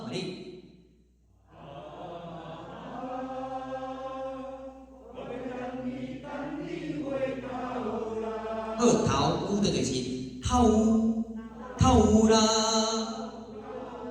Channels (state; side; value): identical; both; correlation 1.00